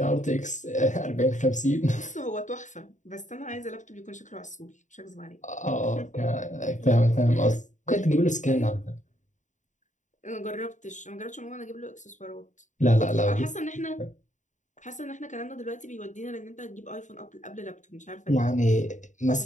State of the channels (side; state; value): right; late; 0.36 ms